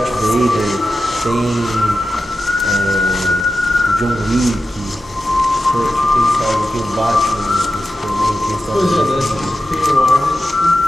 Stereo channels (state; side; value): normal; both; correlation 0.92